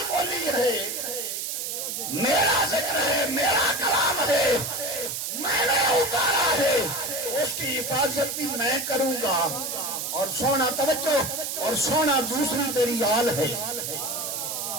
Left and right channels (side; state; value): right; noise; hiss, 4 dB below the sound